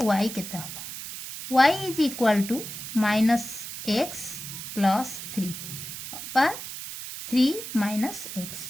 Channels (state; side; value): noise; right; hiss, 9 dB below the sound